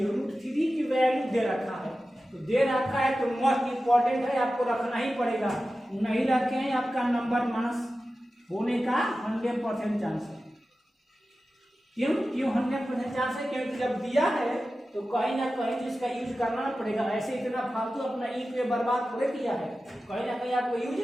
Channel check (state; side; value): normal; both; correlation 0.94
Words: √3 की वैल्यू दे रखा है, तो दे रखा है तो मोस्ट इंपॉर्टेंट है, आपको रखना ही पड़ेगा। नहीं रखे हैं आपका नंबर माइनस होने का 100% चांस है। क्यों 100% चांस है, क्योंकि जब दिया है तो कहीं ना कहीं तो इसका यूज करना पड़ेगा। ऐसे इतना फालतू अपना इंक में बर्बाद थोड़े किया है, कहीं ना कहीं आपको यूज